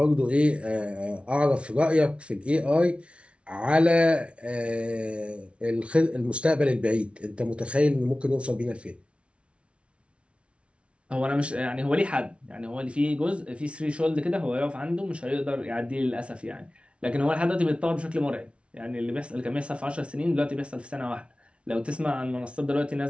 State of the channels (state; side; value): late; left; 0.060 ms